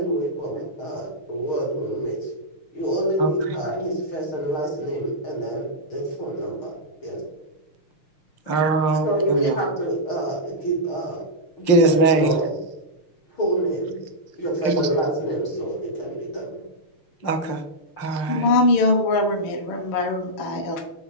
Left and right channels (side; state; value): right; late; 6.5 ms